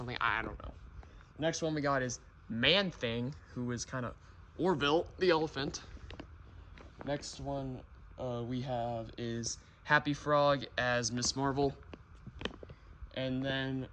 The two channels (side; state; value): both; identical; correlation 1.00